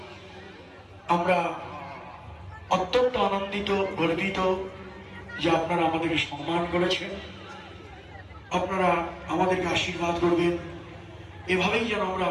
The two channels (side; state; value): both; identical; correlation 1.00